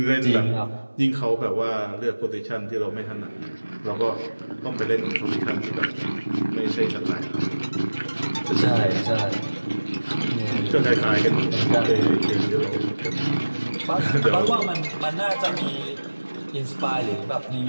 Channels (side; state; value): both; inverted; correlation -1.00